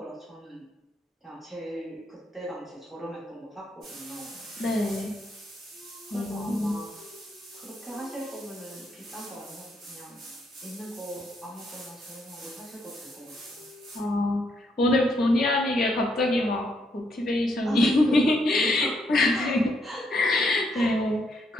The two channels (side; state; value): both; normal; correlation 0.75